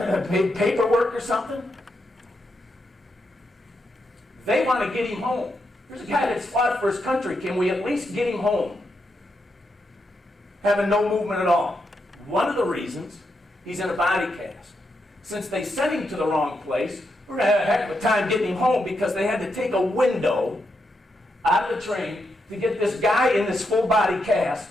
or something? They want to get him home. There's a guy that's fought for his country. Can we at least get him home? Having no movement at all. One of the reasons he's in a body cast. Since they sent him to the wrong place, we're going to have a heck of a time getting him home because they had to take a window out of the train to get this guy in this full body cast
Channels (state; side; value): normal; both; correlation 0.83